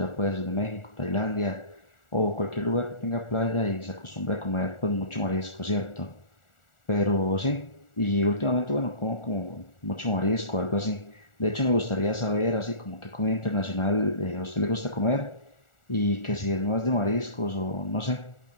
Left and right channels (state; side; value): late; right; 1.4 ms